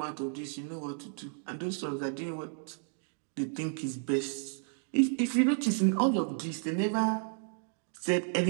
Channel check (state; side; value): silent; left; 56 dB below the other